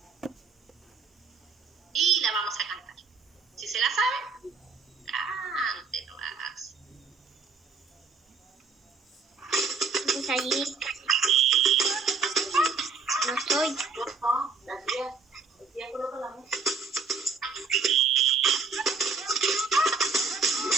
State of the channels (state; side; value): quieter; left; 4.6 dB